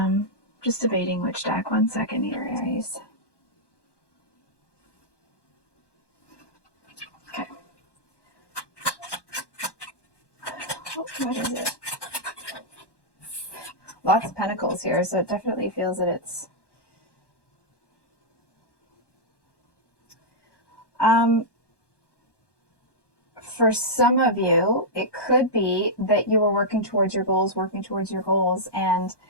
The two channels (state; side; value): late; right; 1.1 ms